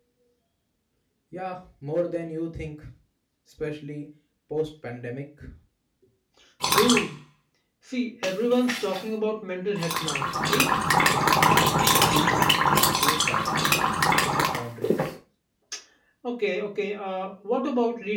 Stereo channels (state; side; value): identical; both; correlation 1.00